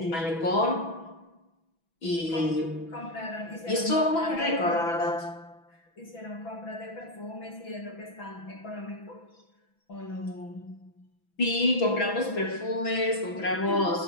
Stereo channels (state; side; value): late; right; 6.0 ms